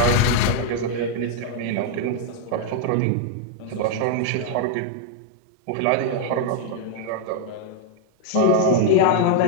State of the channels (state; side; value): different; both; correlation 0.00